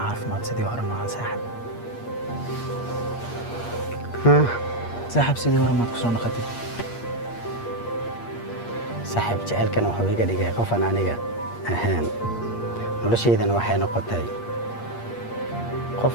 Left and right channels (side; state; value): right; late; 8.5 ms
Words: ما تسدي ورا مع ساحب ساحب سيدي ورا ما تكسر نقطي saaxiib jaceylkan wuxuu iga dhigay qof aan aniga ahaan noloshaydana waxay noqotay qof